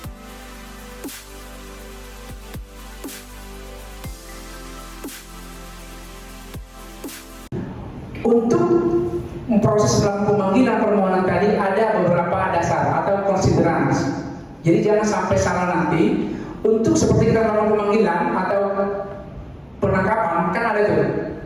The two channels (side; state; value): both; identical; correlation 1.00